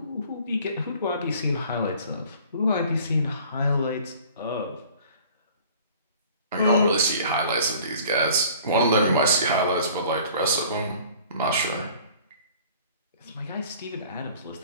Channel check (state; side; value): inverted; both; correlation -0.49